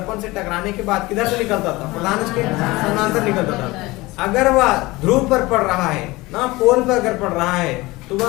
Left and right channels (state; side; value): quieter; right; 21.1 dB